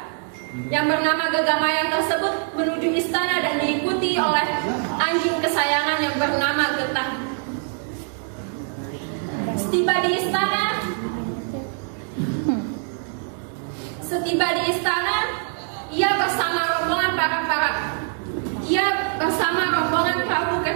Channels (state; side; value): silent; left; 56 dB below the other